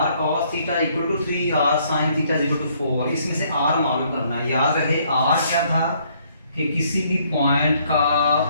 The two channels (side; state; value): both; inverted; correlation -0.66